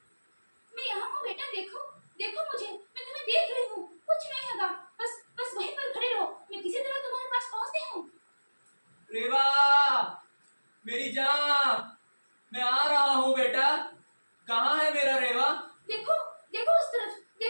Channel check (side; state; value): both; inverted; correlation -1.00